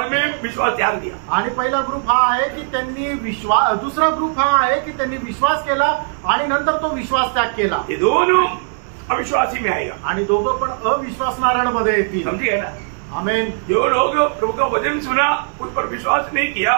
में विश्वास त्याग दिया। आणि पहिला ग्रुप हा आहे की त्यांनी विश्वास, दुसरा ग्रुप हा आहे की त्यांनी विश्वास केला आणि नंतर तो विश्वास त्याग केला। ये दोनों अविश्वासी में आएगा। आणि दोघं पण अविश्वासणाऱ्यांमध्ये येतील। समझिए ना? आमेन। जो लोग प्रभु का वचन सुना उस पर विश्वास नहीं किया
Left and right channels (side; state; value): left; silent; 63 dB below the other